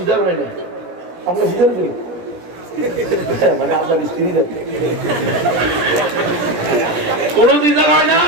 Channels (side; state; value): left; late; 17 ms